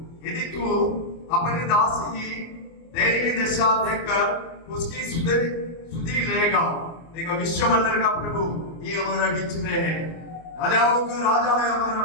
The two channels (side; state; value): right; late; 24 ms